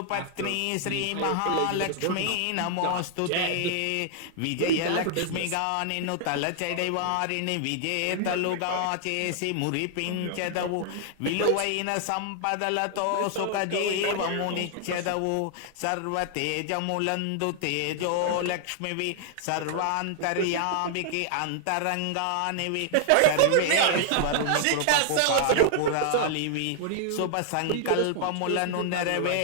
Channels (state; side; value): different; both; correlation 0.00